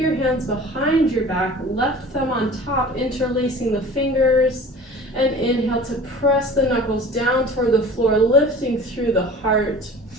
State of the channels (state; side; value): normal; both; correlation 0.41